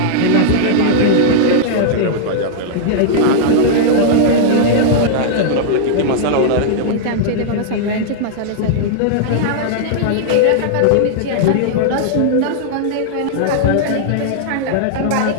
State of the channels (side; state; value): both; different; correlation -0.01